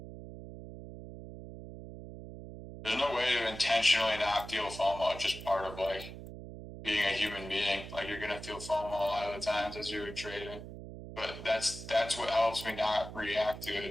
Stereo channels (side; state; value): right; noise; hum, 12 dB below the sound